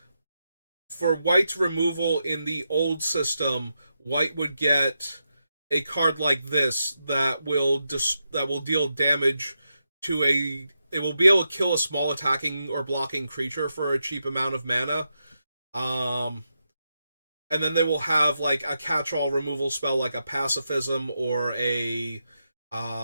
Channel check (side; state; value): both; inverted; correlation -0.86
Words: for white's removal in the old system, white would get a card like this that will deal damage to a. It will be able to kill a small attacking or blocking creature for a cheap amount of mana. And then they will have like a catch-all removal spell like a Pacifism or a